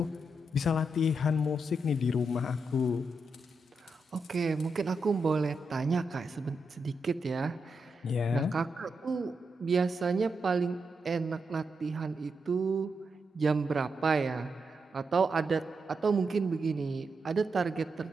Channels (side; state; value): both; normal; correlation 0.84